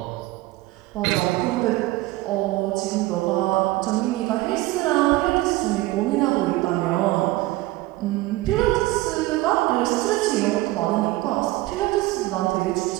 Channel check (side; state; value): left; quieter; 18.7 dB